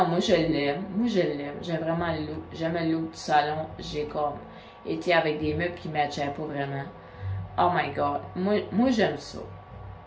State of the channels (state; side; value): identical; both; correlation 1.00